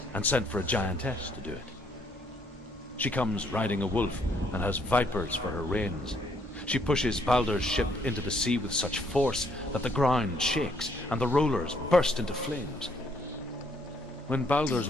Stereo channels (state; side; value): normal; both; correlation 0.69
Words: and sent for a giantess to do it. She comes riding a wolf and has vipers for her reins. She pushes Balder's ship into the sea with such force that the ground shakes and the rollers burst into flames. When Balder's